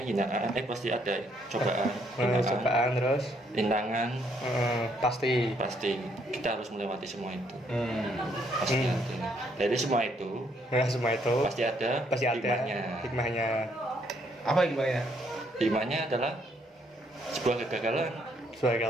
hinaan, pasti ada cobaan, Cobaan terus. rintangan, Pasti. pasti kita harus melewati semua itu. Hmm. Pasti ada. Dari semua itu Nah, semua itu pasti ada hikmahnya. hikmahnya. Apa gimana? Hikmahnya adalah sebuah kegagalan.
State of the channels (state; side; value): normal; both; correlation 0.70